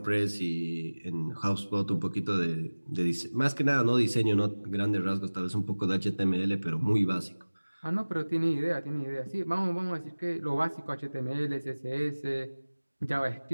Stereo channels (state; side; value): inverted; both; correlation -1.00